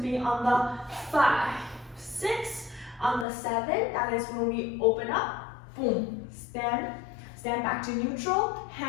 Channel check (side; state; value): right; drops out; at 3.2 s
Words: on the 5, 6, on the 7, that is when we open up, boom, stand back to neutral,